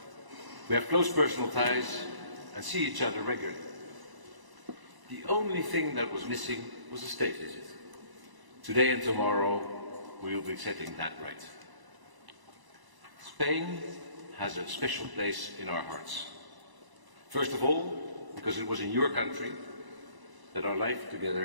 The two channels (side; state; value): left; late; 1.0 ms